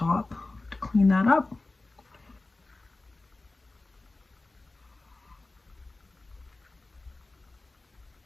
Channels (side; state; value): right; quieter; 3.1 dB